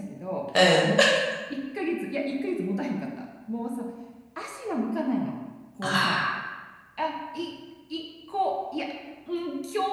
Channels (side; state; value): both; identical; correlation 1.00